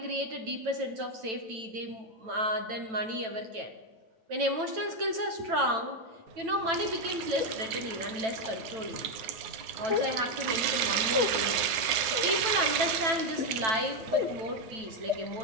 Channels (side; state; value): left; late; 9.4 ms